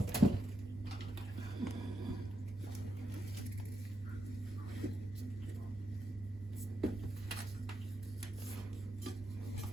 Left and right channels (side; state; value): both; normal; correlation 0.83